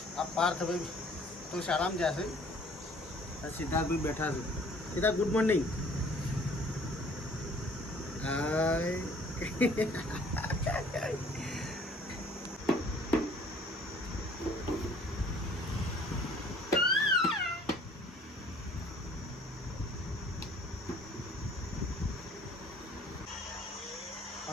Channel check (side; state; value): both; normal; correlation 0.55